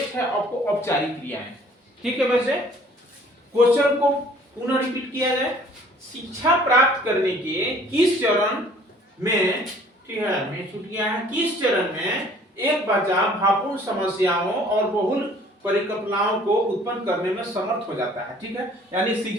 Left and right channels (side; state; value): both; normal; correlation 0.54